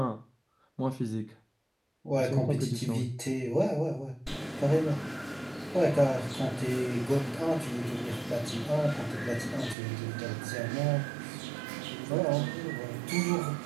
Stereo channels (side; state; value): left; drops out; at 9.8 s